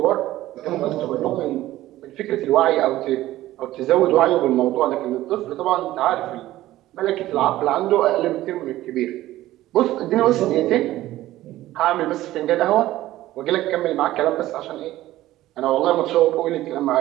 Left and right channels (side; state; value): left; quieter; 15.4 dB